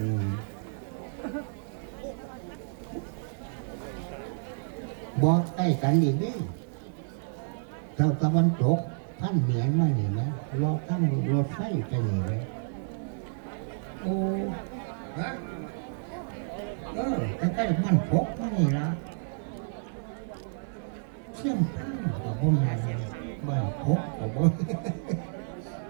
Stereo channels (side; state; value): left; silent; digital silence